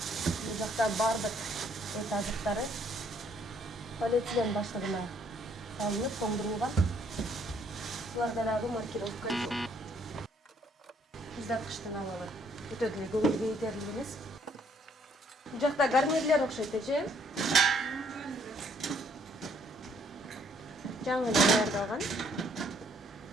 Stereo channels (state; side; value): normal; both; correlation 0.66